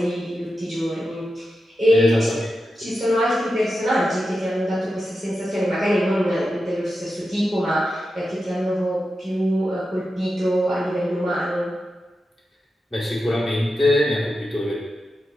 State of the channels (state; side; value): normal; both; correlation 0.90